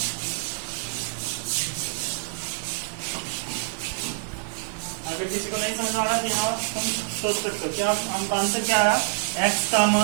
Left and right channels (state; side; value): silent; left; digital silence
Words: अगर किसी को नहीं समझ आ रहा तो यहाँ तुम सोच सकते हो क्या हमका आंसर क्या है? एक्स का